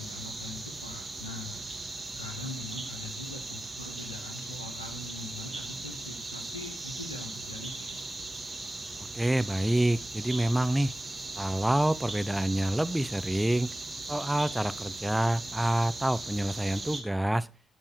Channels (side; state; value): both; normal; correlation 0.95